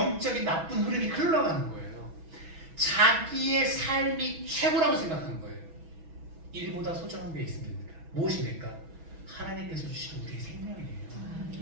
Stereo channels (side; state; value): left; late; 6.1 ms